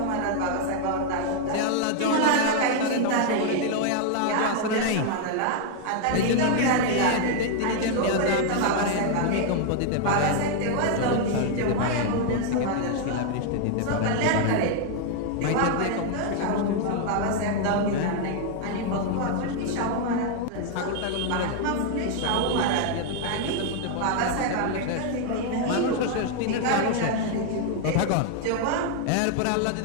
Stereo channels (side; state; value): both; different; correlation 0.00